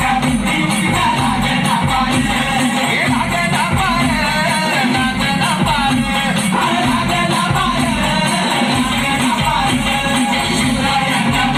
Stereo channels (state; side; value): identical; both; correlation 1.00